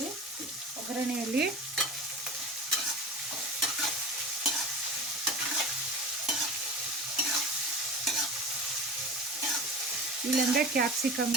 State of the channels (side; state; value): both; normal; correlation 0.32